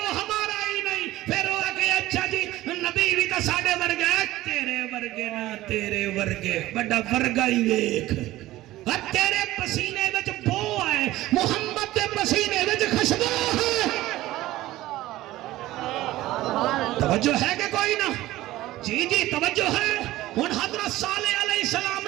ہمارا ہی نہیں۔ پھر وہ کہ اچھا جی نبی بھی تو ساڑے ورگے ہے، تیرے ورگے نہ تیرے ورگے بڑا ورگا ہی ویکھ، اور تیرے پسینے وچ بو ہے، محمد دے پسینے وچ خوشبو ہے۔ توجہ ہے کہ کوئی نہ؟ جی جی توجہ ہے۔ ہن حضرت صالح علیہ السلام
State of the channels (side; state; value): left; quieter; 16.4 dB